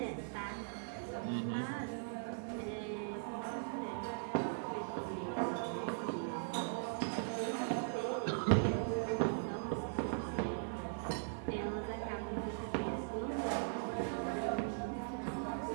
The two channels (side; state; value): left; silent; 51 dB below the other